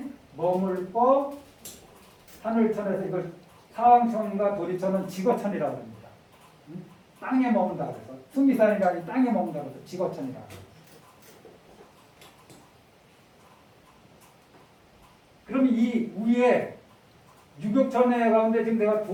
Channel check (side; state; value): both; identical; correlation 1.00